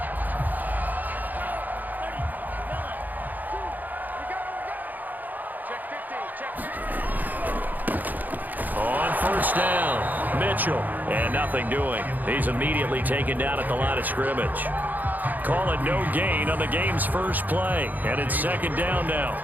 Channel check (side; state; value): left; late; 0.084 ms